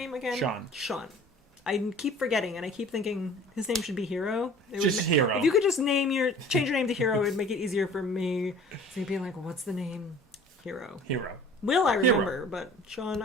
again? Sean. I keep forgetting, and I keep thinking his name should be Hero. Hero. If you could just change your name to Hero, it'd make it easier for me. So you'd be like, what's the name? Hero. Will I remember, but Sean,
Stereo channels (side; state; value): both; normal; correlation 0.47